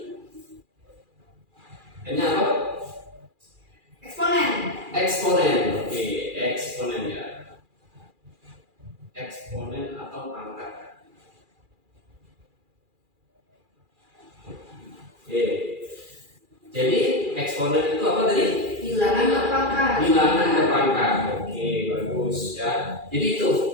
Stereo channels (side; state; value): left; late; 2.4 ms